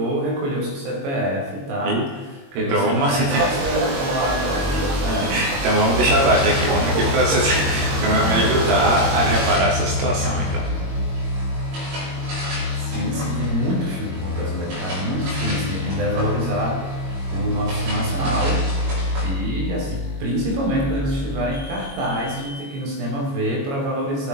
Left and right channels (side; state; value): left; late; 22 ms